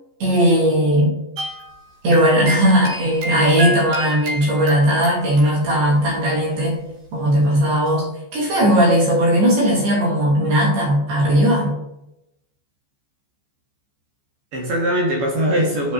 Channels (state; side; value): late; left; 14 ms